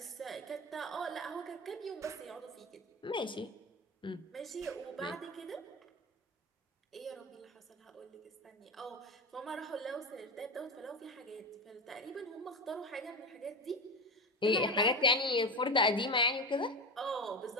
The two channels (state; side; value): normal; both; correlation 0.21